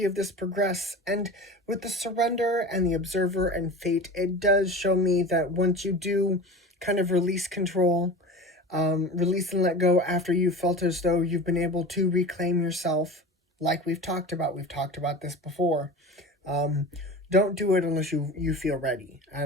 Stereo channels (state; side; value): normal; both; correlation 0.32